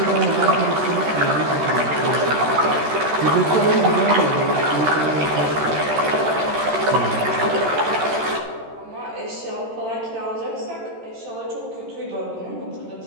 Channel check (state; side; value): late; left; 13 ms